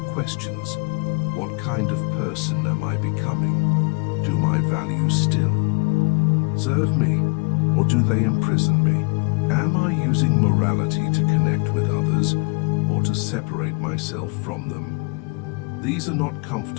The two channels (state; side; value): quieter; right; 32.5 dB